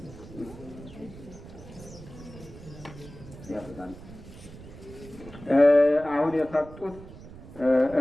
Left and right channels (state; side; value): noise; right; rumble, 16 dB below the sound